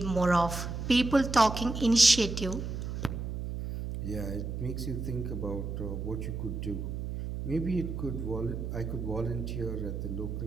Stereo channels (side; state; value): right; noise; hum, 5 dB below the sound